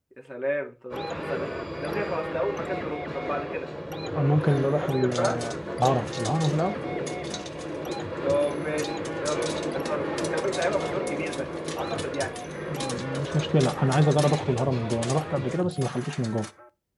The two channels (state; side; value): identical; both; correlation 1.00